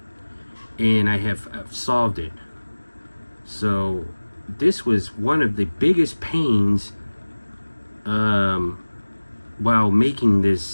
and I've solved it. So this was one of the biggest pains while making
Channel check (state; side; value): inverted; both; correlation -1.00